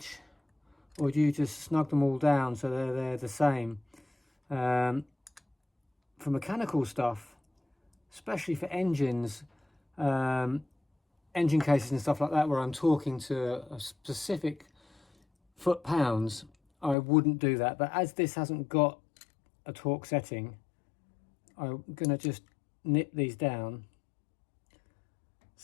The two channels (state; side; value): drops out; right; at 16.9 s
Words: or do you just snug them all down so they're the same? For mechanical stuff, especially for engines, engine cases and stuff like that, where I'm talking to a specific foot-pounds, I wouldn't do that. But as this hasn't got a torque setting, I'm gonna just nip these down